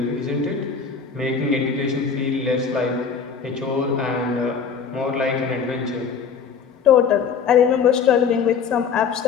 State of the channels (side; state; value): right; quieter; 6.1 dB